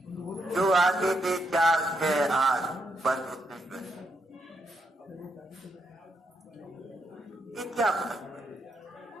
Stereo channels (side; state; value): both; normal; correlation 0.79